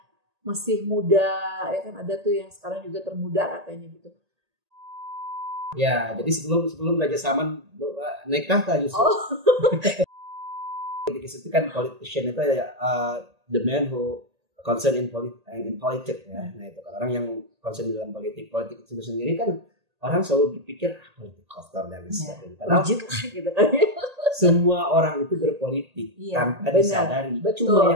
masih muda, ya kan ada tuh yang sekarang juga termuda katanya gitu. Ya, jadi sebelum Raja Salman naik tahta justru. Oh. Itu kan politician itu the man who concern in politics ya. Nah itu kan orang yang concern dalam politik itu sendiri kan orang selalu berpikir politik kotor dan sebagainya. Padahal gitu kan. Semua orang itu berpolitik tanpa disadari. Cuma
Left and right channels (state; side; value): late; left; 1.8 ms